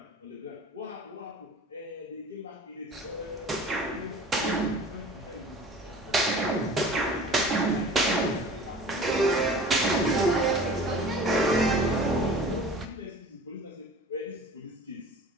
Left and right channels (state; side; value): normal; both; correlation 0.42